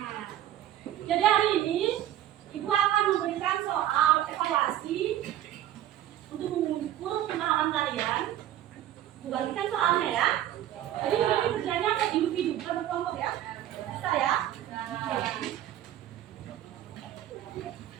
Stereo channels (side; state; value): left; quieter; 12.4 dB